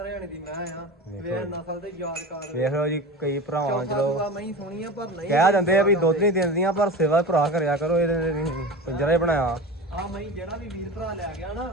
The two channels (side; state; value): both; normal; correlation 0.30